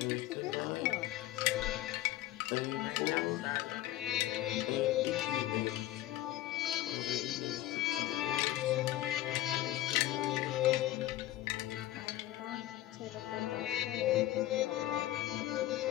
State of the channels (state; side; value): quieter; right; 14.8 dB